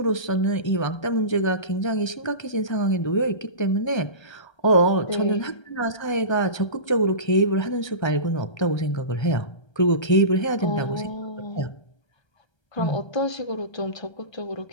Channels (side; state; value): right; late; 1.3 ms